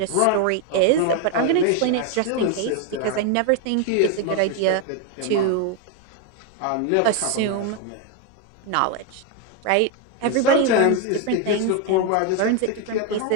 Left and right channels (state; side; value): different; both; correlation 0.01